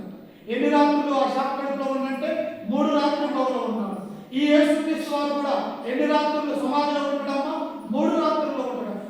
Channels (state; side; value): identical; both; correlation 1.00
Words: ఎన్ని రాత్రులు ఆ శాఖ కడుపులో ఉందంటే 3 రాత్రులు ఉన్నాడు. ఈ యేసు క్రీస్తు వారు కూడా ఎన్ని రాత్రులు సమాధిలో ఉంటాడమ్మా? 3 రాత్రుల్లో ఉంటాడు.